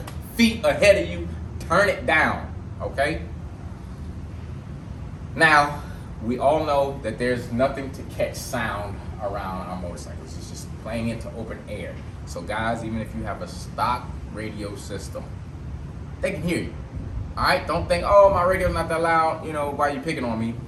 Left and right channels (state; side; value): identical; both; correlation 1.00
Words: feet ahead of you, turn it down. Okay? Now, we all know that there's nothing to catch sound around our motorcycles. It's just playing into open air. So guys, even if you have a stock radio system, they can hear you. All right? Don't think, oh, my radio's not that loud, why are you picking on me?